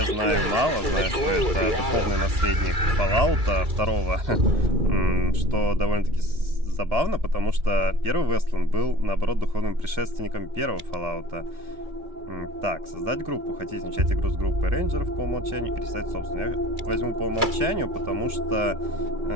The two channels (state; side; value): late; left; 2.4 ms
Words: again in the glow of the atom.